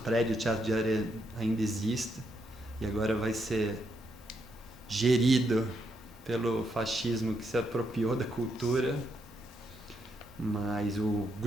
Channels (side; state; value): both; normal; correlation 0.79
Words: do Teatro de Arena ainda exista, e agora vai ser gerido pelo fascismo que se apropriou da cultura, mas o